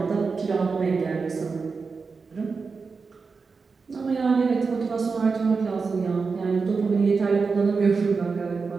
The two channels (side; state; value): left; quieter; 4.8 dB